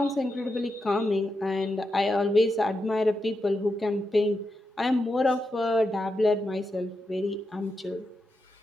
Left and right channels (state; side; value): normal; both; correlation 0.86